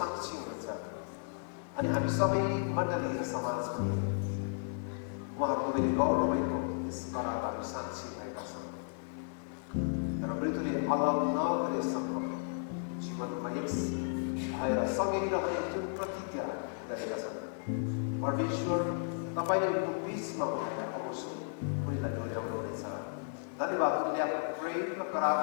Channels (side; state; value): right; silent; digital silence